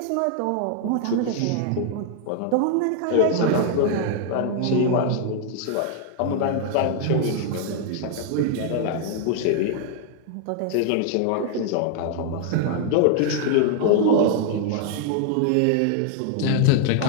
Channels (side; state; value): both; different; correlation 0.00